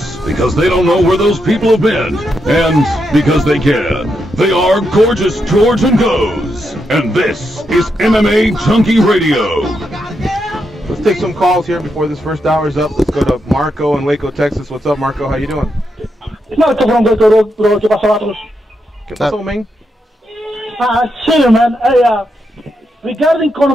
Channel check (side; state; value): both; normal; correlation 0.83